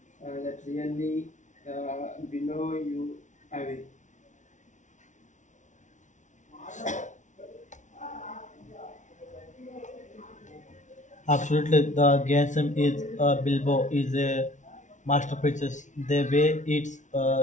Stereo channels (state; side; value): late; right; 0.36 ms